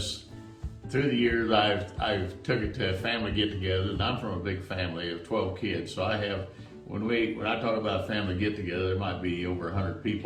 through the years I've took it to family get-togethers, and I'm from a big family of 12 kids. So I have, when I talk about family get-together, there might be over 100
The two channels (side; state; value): both; identical; correlation 1.00